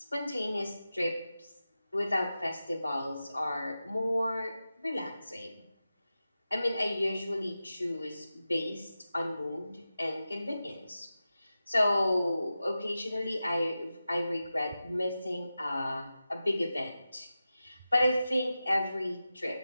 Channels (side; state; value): both; inverted; correlation -0.93